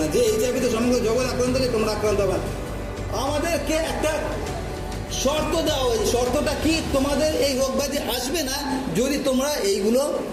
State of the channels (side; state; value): both; identical; correlation 1.00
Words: না, যে HIV-তে সমগ্র জগৎ আক্রান্ত হয়েছে তোমরা আক্রান্ত হবে না। আমাদেরকে একটা শর্ত দেওয়া হয়েছে, শর্তটা কি? তোমাদের এই রোগ ব্যাধি আসবে না যদি তোমরা এইগুলো